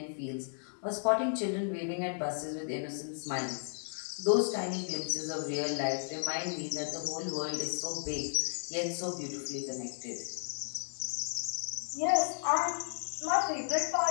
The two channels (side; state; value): right; silent; digital silence